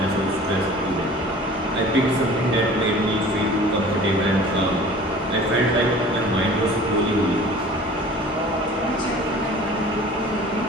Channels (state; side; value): normal; both; correlation 0.44